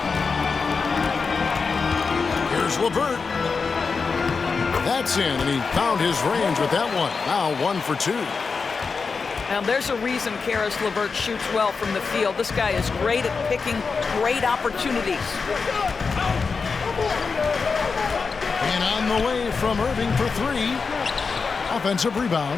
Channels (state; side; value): quieter; right; 4.9 dB